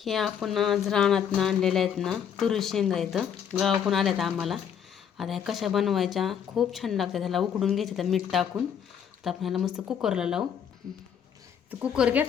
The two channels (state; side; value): quieter; right; 8.2 dB